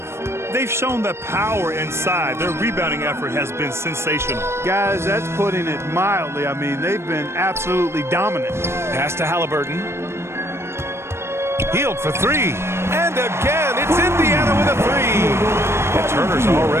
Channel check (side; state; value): left; late; 0.13 ms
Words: They've shown that power inside. Their rebounding effort has been sensational. Guys, that's putting it mildly. I mean, they've been absolutely dominant. Pass to Halliburton. Hield for 3. And again, it's Indiana with a 3. And Turner's